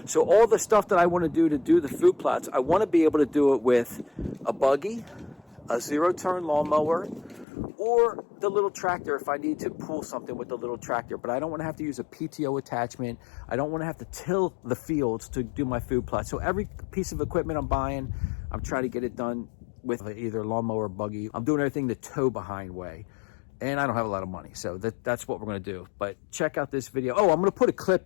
So all the stuff that I want to do the food plots, I want to be able to do it with a buggy, a zero-turn lawnmower, or the little tractor if I need to pull something with the little tractor. But I don't want to have to use a PTO attachment. I don't want to have to till the fields to do my food plot. So every piece of equipment I'm buying, I'm trying to get it done with either lawnmower or buggy. I'm doing everything the tow behind way. And I don't have a lot of money, so that's what we're going to do. But check out this video. Oh, I'm going to put a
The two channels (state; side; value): drops out; right; at 7.5 s